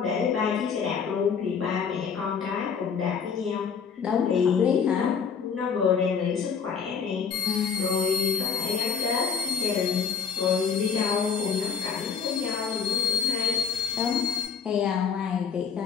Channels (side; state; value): right; quieter; 6.5 dB